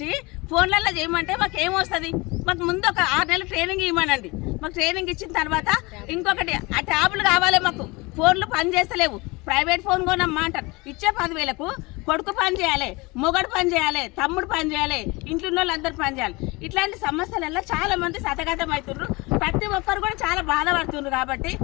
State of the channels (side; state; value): right; quieter; 24.7 dB